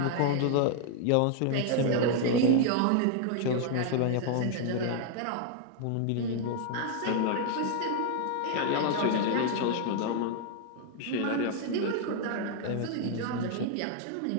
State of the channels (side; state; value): both; different; correlation 0.00